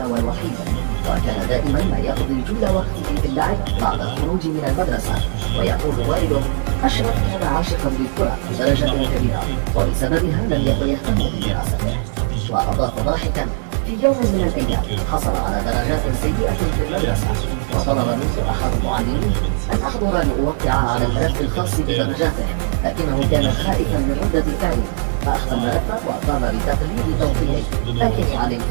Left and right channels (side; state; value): left; silent; digital silence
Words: والوحيد، وكان دائما ما يقضي جل وقته في اللعب بعد الخروج من المدرسة. ويقول والده: أشرف كان عاشقا للكرة بدرجة كبيرة، وبسببها لم يكن يهتم بدراسته. وأضاف ضاحكا: في يوم من الأيام حصل على درجات سيئة في المدرسة، وطلب منه أحد المعلمين أن أحضر لأوقع على الملف الخاص بدرجاته، لكنه كان خائفا من ردة فعله، فأخذ الملف وقام بتقليد توقيعه، لكني علمت